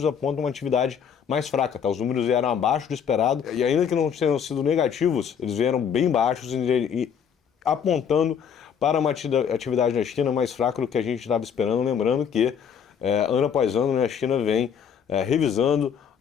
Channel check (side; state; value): right; quieter; 7.6 dB